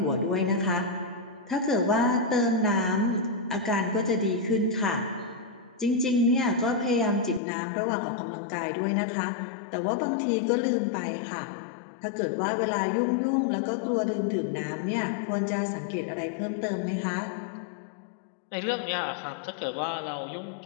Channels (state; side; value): drops out; right; at 7.4 s